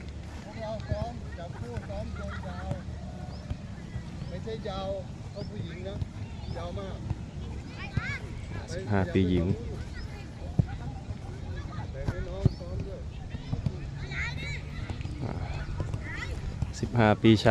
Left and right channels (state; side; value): identical; both; correlation 1.00